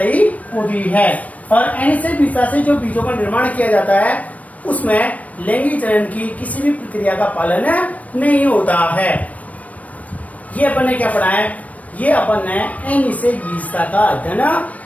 होती है। और अनिश्चित विशेषता से जो बीजों का निर्माण किया जाता है उसमें लैंगिक जनन की किसी भी प्रक्रिया का पालन नहीं होता है। ये अपन ने क्या पढ़ा है, ये अपन ने अनिश्चित विशेषता का अध्ययन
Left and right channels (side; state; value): right; late; 0.069 ms